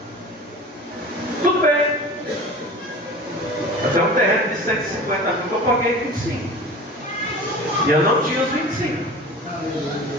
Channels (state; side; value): normal; both; correlation 0.37